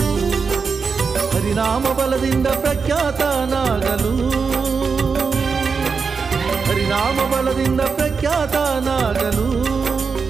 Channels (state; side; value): quieter; left; 5.3 dB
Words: ಹರಿನಾಮ ಬಲದಿಂದ ಪ್ರಖ್ಯಾತನಾಗಲು ಹರಿನಾಮ ಬಲದಿಂದ ಪ್ರಖ್ಯಾತನಾಗಲು